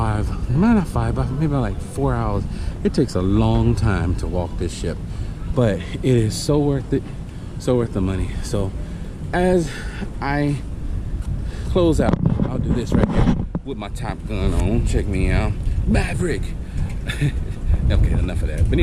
maybe like 4 hours. It takes a long time to walk this ship, but it is so worth it, so worth the money. So as I close out, I'll do this right here with my Top Gun on. Check me out, Maverick. Okay, enough of that. But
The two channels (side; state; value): both; identical; correlation 1.00